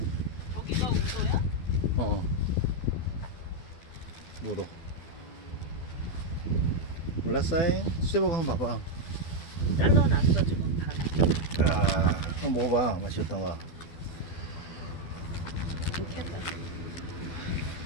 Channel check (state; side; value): late; right; 12 ms